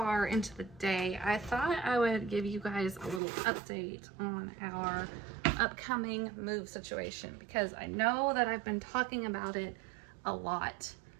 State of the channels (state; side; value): drops out; left; at 3.2 s